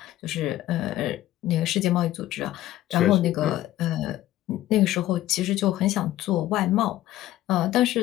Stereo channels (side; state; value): right; quieter; 14.5 dB